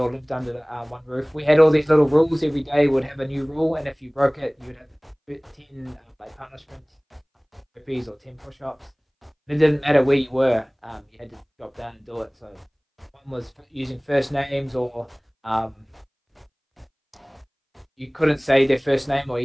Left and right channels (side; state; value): both; identical; correlation 1.00